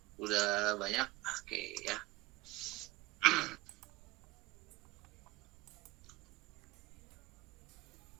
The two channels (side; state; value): left; quieter; 20.9 dB